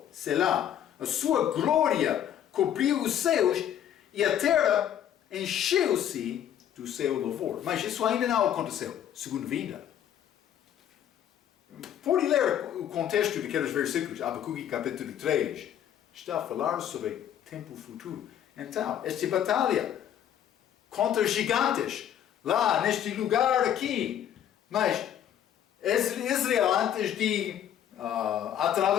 Selá. A sua glória cobriu os céus e a terra encheu-se do seu louvor. Mas isso ainda não aconteceu, segundo vinda. Pode ler o contexto daqueles versículos. Abacuque capítulo 3 está a falar sobre tempo futuro. Então, esta batalha contra gigantes, lá neste lugar aqui. Mas Israel, antes de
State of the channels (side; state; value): right; quieter; 10.2 dB